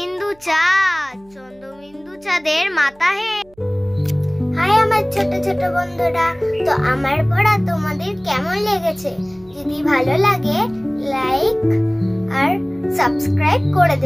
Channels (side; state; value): right; noise; hum, 29 dB below the sound